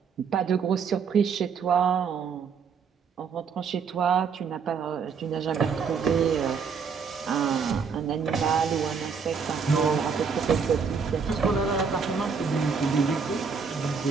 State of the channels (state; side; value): quieter; left; 5.9 dB